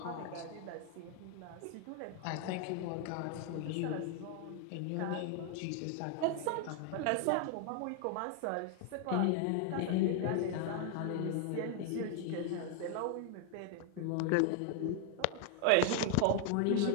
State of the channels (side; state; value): both; different; correlation 0.00